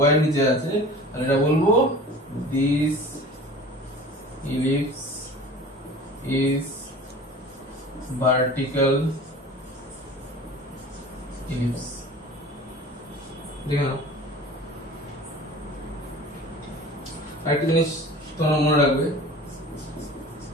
y এর নিচে আছে, তাহলে এটা বলবো this ellipse is vertical ellipse। দেখো আরেকটা জিনিস তোমরা মনে রাখবে,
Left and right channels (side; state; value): both; normal; correlation 0.41